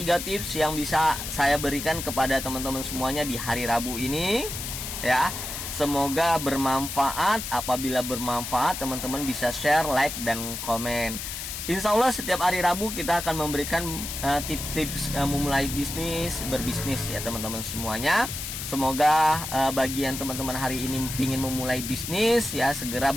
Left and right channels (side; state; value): left; noise; hiss, 6 dB below the sound